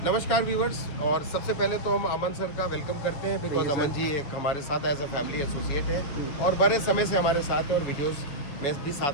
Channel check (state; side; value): late; right; 7.2 ms